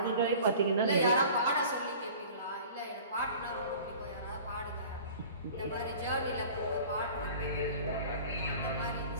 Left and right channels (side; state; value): both; inverted; correlation -0.43